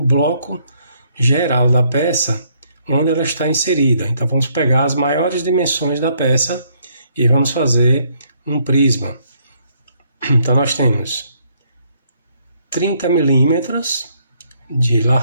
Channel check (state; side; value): inverted; both; correlation -0.69